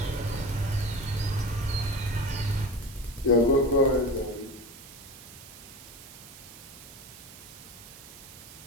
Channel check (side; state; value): right; noise; hiss, 17 dB below the sound